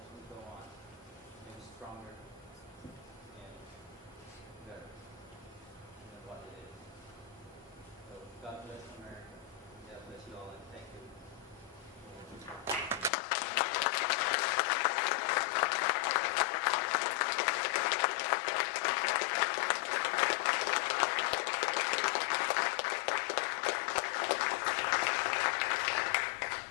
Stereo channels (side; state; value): right; drops out; at 13.1 s